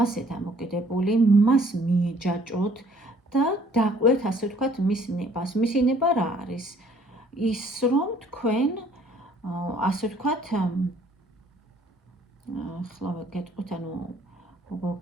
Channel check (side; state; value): both; normal; correlation 0.59